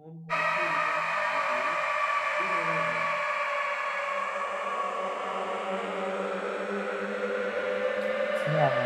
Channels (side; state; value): both; identical; correlation 1.00